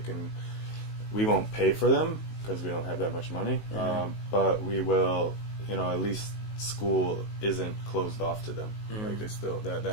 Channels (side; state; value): right; late; 19 ms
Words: we won't pay for them because we don't have that much money. But we will, at least school isn't closed off to them. Like they still